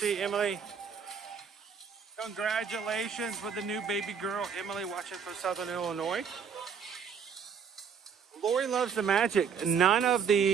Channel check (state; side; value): quieter; left; 6.7 dB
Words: you, Emily. Congratulations with the new baby girl, Emily, watching from Southern Illinois. Lori loves the magic. None of